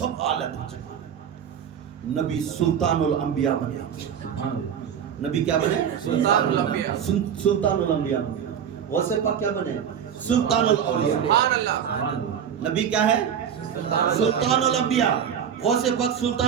اعلیٰ درجے کا نبی سلطان الانبیاء بنے نبی کیا بنے سلطان الانبیاء بنے غوث پاک کیا بنے سلطان الاولیاء نبی کیا ہے سلطان الانبیاء غوث پاک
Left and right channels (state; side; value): quieter; left; 8.3 dB